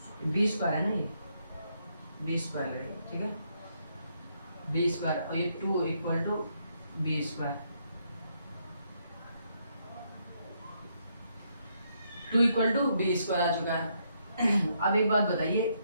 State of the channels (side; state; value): both; inverted; correlation -0.75